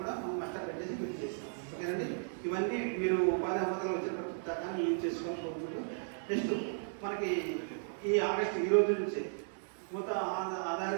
కూడా మనం మస్టర్ పెట్టేసి బిల్ చేస్తాం. ఓకేనండి. ఇవన్నీ మీరు ఉపాధి హామీలో వచ్చేటప్పుడు దాకా యూజ్ చేసుకొని పోతుంది. నెక్స్ట్ మనకి ఈ ఆగస్టు ఈ రోజు నుంచి మొత్తం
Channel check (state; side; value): silent; left; digital silence